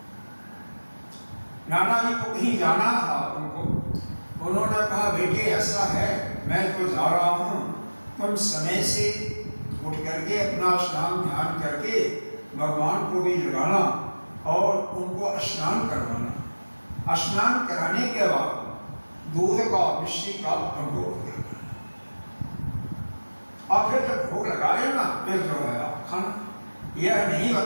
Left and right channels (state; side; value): inverted; both; correlation -1.00